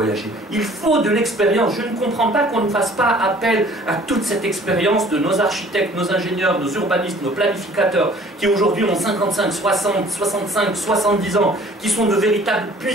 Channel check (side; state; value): both; normal; correlation 0.52